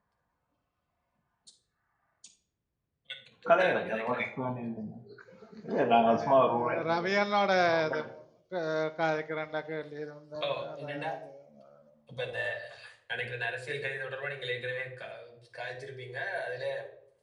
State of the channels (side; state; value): both; identical; correlation 1.00